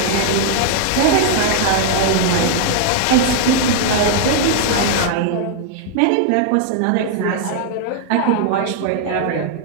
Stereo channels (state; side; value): different; both; correlation 0.00